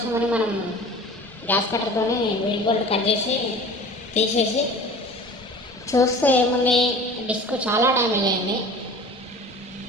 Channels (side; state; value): both; normal; correlation 0.41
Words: మనం గ్యాస్ కట్టర్తో వీల్ బోల్ట్ కట్ చేసి తీసేసి చూస్తే ఏముంది, డిస్క్ చాలా డ్యామేజ్ అయింది.